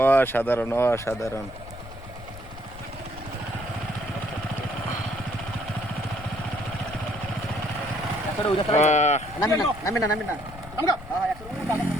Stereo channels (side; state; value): left; noise; rumble, 14 dB below the sound